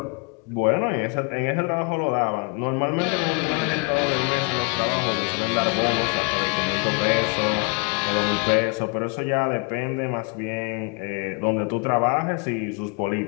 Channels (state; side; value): quieter; right; 32.4 dB